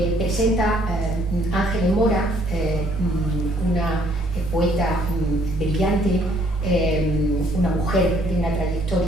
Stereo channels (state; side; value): normal; both; correlation 0.64